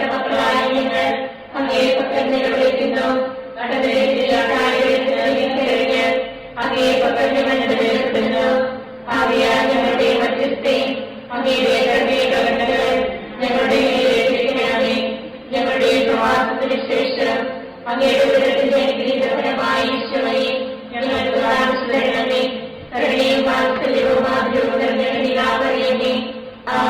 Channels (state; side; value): identical; both; correlation 1.00